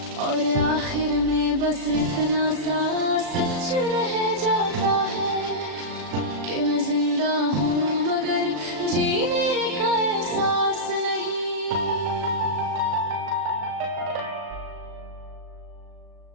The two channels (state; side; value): late; left; 37 ms